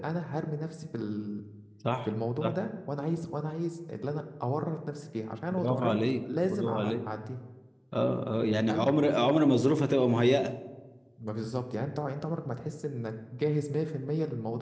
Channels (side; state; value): both; identical; correlation 1.00